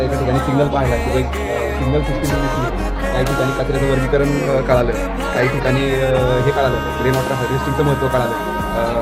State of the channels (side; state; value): both; identical; correlation 1.00